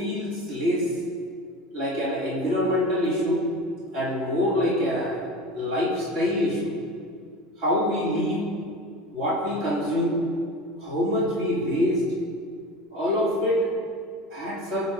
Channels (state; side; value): normal; both; correlation 0.32